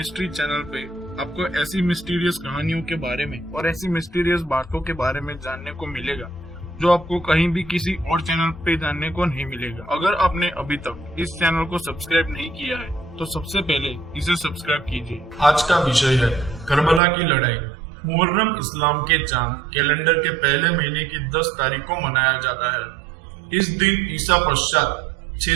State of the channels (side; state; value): left; drops out; at 17.0 s